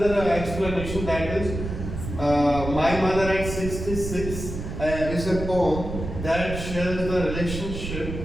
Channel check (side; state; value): right; noise; rumble, 7 dB below the sound